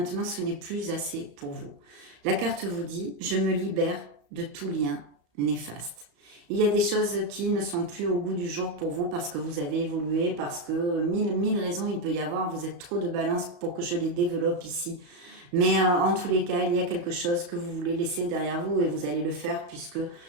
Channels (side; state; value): left; late; 34 ms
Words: ce n'est plus assez pour vous. La carte vous dit, je me libère de tout lien néfaste. Il y a des choses qui ne sont plus au goût du jour pour vous parce que vous avez évolué, parce que mille raisons il peut y avoir. Vous êtes trop de balance pour que je les développe ici. Mais en tous les cas, il y a quelque chose que vous voulez laisser derrière vous et vous allez le faire puisque